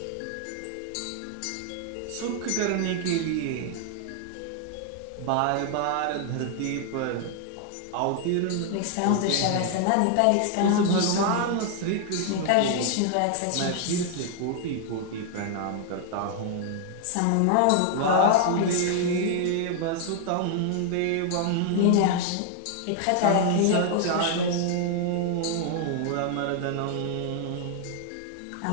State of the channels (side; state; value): both; different; correlation 0.00